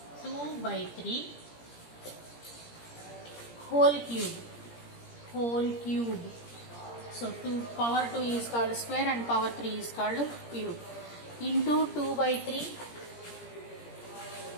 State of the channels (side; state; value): right; late; 17 ms